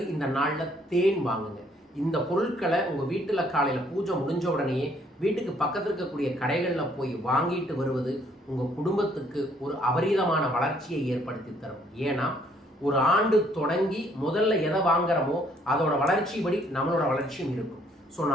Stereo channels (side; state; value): both; normal; correlation 0.65